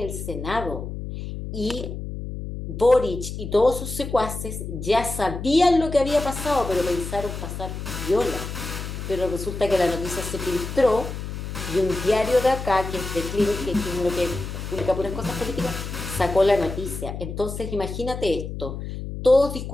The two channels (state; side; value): noise; left; hum, 7 dB below the sound